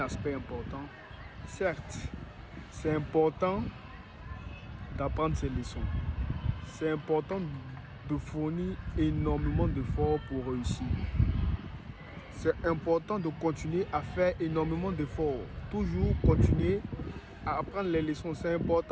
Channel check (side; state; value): both; identical; correlation 1.00